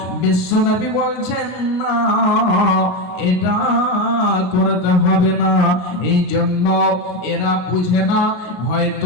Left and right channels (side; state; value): right; late; 33 ms